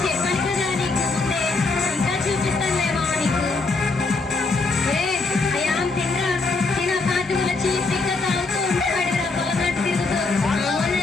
చెప్పాను కదా నీకు ముందే, ఇంకా చూపిస్తానులే మామ నీకు. అయాం తినరా, తిన పాతుల చీపిక తాగుతూ ఉంటాడురా, పొలంలో తిరుగుతూ.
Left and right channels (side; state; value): right; quieter; 3.7 dB